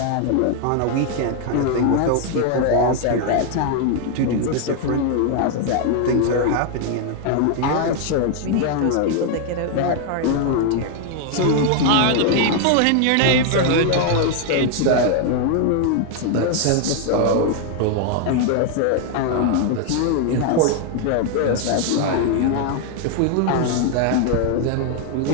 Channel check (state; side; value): different; both; correlation 0.00